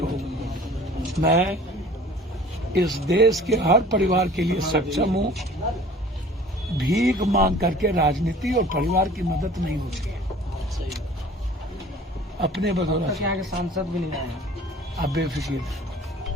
हो, मैं इस देश के हर परिवार के लिए सक्षम हूँ। भीख मांग करके राजनीति और परिवार की मदद नहीं होती है। अपने बदौलत यहाँ के सांसद भी नहीं आए, आप बेफिक्र।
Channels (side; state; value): both; normal; correlation 0.47